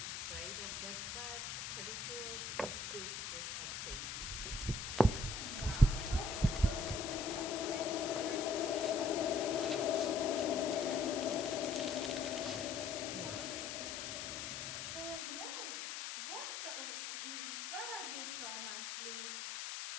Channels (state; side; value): noise; left; hiss, 5 dB below the sound